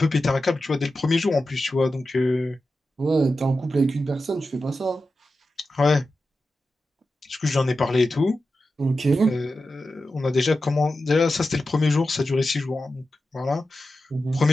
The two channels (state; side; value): normal; both; correlation 0.91